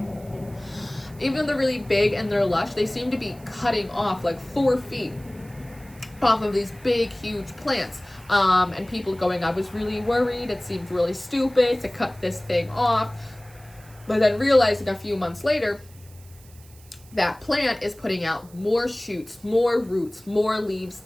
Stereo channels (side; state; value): right; noise; hiss, 25 dB below the sound